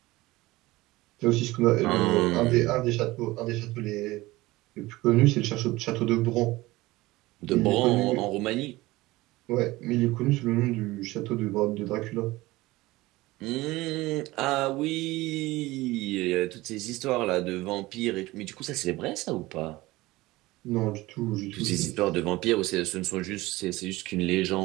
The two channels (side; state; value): left; quieter; 19.5 dB